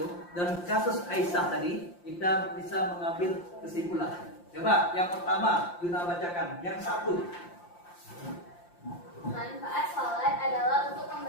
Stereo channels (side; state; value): right; late; 5.7 ms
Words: dan kasus Aisyah tadi kita bisa mengambil kesimpulan. Coba yang pertama Yuna bacakan. Yang satu. Manfaat sholat adalah untuk